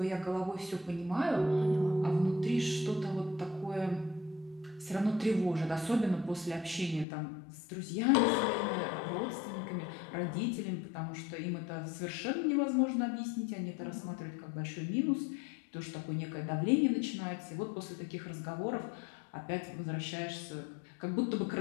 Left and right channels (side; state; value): right; drops out; at 7.1 s